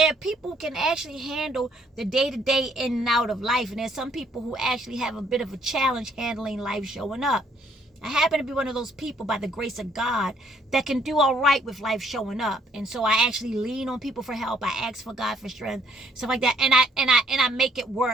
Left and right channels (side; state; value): both; normal; correlation 0.65